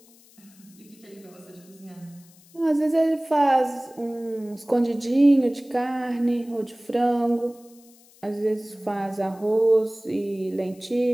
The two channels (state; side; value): noise; left; hiss, 27 dB below the sound